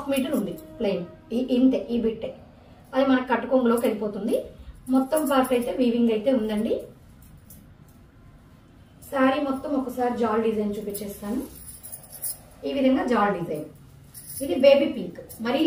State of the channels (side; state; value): both; identical; correlation 1.00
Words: మీటర్ ఉంది ప్లెయిన్, ఇంతే, ఈ బిట్టే. అది మనకు కట్టుకొంగులోకి వెళ్ళిపోతుంది. మొత్తం పార్ట్ అయితే వీవింగ్ అయితే ఉందండి. శారీ మొత్తం ఒకసారి జాల్ డిజైన్ చూపించేస్తాను. ఈ విధంగా జాల్ డిజైన్. ఇది బేబీ పింక్, మరీ